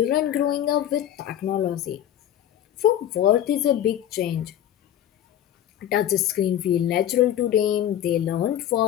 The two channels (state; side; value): quieter; right; 11.1 dB